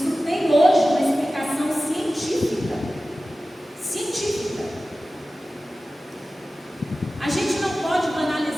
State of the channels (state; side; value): normal; both; correlation 0.95